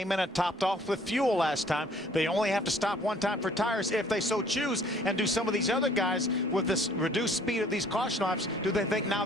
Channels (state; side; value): normal; both; correlation 0.58